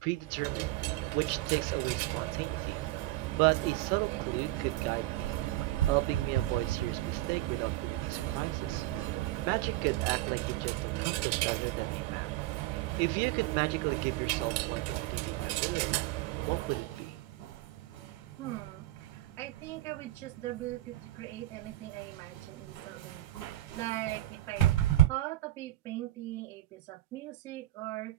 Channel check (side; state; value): left; quieter; 16.2 dB